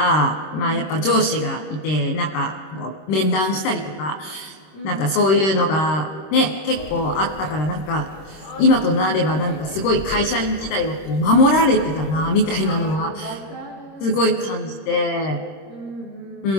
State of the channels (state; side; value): late; right; 26 ms